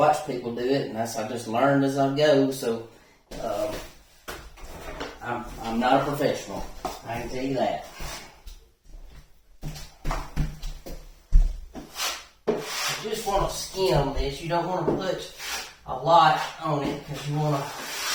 people do it, and I just learned as I go. So I'm not a professional. I can tell you that. You just want to skim this. You don't want to put a lot on it because you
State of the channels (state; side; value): identical; both; correlation 1.00